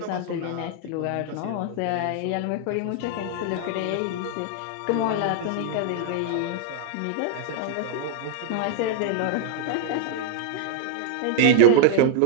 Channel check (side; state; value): both; different; correlation 0.01